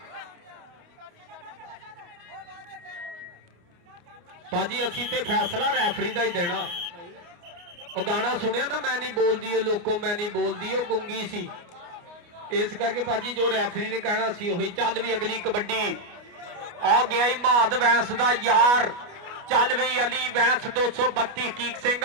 भाजी असी ते फैसला रैफरी का ही देना। वो गाना सुनिया ना, मैं नहीं बोलती है लोगों, मैं नहीं बोलती, वो गुंगी सी, इस करके भाजी जो रैफरी ने कहना सी वही। चल भी अगली कबड्डी, आ गया ही महाद वैंस दा यार। चल भी अली वैंस 232 हकीक सिंह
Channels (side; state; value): left; late; 29 ms